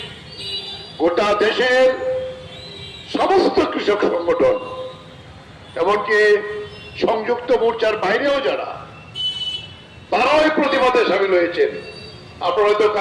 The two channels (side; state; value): both; identical; correlation 1.00